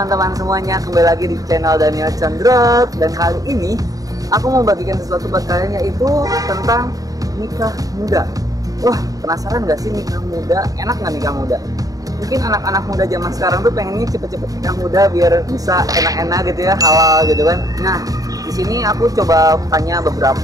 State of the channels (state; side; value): late; left; 0.17 ms